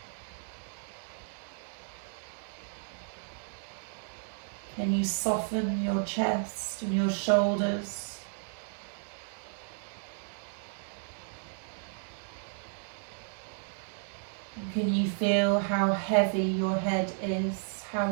Can you soften your chest and your shoulders? Can you feel how heavy your head is, how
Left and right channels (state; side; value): silent; left; digital silence